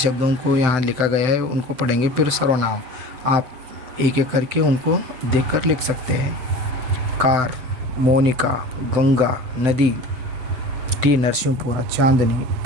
को यहाँ लिखा गया है उनको पढ़ेंगे, फिर सर्वनाम. आप एक एक करके उनको देखकर लिख सकते हैं. कार, मोनिका, गंगा, नदी, टी नरसिंहपुरा, चांदनी,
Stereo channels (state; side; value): late; left; 7.9 ms